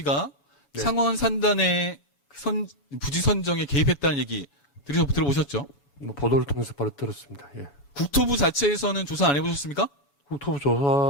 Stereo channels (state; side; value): late; right; 7.1 ms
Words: 네. 상원 산단의 부지 선정에 개입했다는 얘기 들어보셨죠? 뭐 보도를 통해서 바로 들었습니다. 예. 국토부 자체에서는 조사 안 해보셨습니까? 국토부